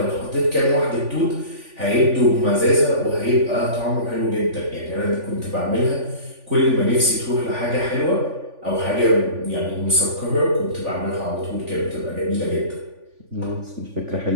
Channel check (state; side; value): late; left; 3.5 ms